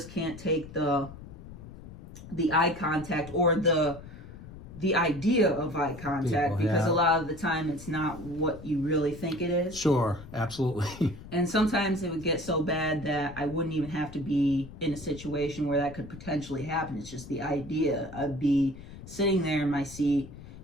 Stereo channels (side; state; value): left; noise; rumble, 15 dB below the sound